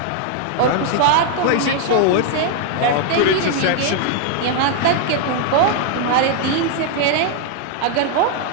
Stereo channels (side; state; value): both; different; correlation 0.00